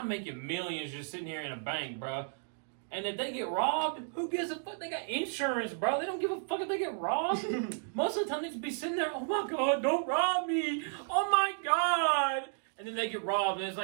making millions just sitting here in a bank, bro. And if they get robbed, who gives a fuck? They got insurance, bro. They don't give a fuck if they get robbed. Most of the time, they just be sitting there, oh my God, don't rob me. Oh my God. And then they get robbed, and it's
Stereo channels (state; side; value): silent; left; digital silence